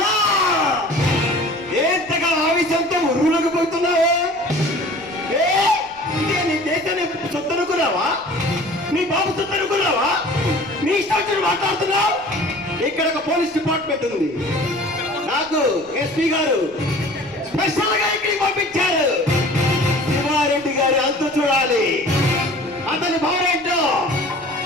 ఎంతగా ఆవేశంతో ఉరువులకు పోతున్నావా? నీ దేశాన్ని సొత్తు అనుకున్నావా? నీ బాబు సొత్తు అనుకున్నావా? నీ ఇష్టం మాట్లాడుతున్నావు. ఇక్కడ ఒక పోలీస్ డిపార్ట్మెంట్ ఉంది. నాకు ఎస్పీ గారు స్పెషల్ గా ఇక్కడికి పంపించారు. శివారెడ్డి గారి అంతు చూడాలి. అతని భార్యంటో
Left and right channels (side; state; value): left; noise; rumble, 28 dB below the sound